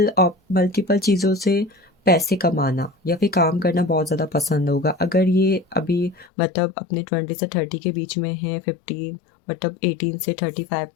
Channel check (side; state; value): right; drops out; at 6.3 s